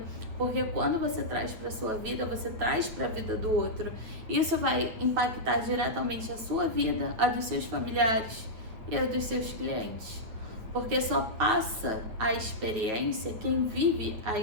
porque quando você traz para sua vida, você traz para a vida do outro. Isso vai impactar diretamente a sua vida, a dos seus familiares e a dos seus clientes. Porque só passa a experiência quem vive a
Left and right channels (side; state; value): left; late; 8.9 ms